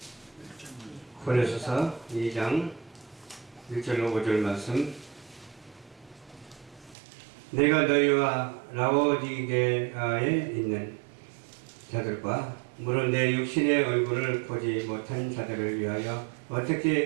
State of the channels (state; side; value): drops out; left; at 7.0 s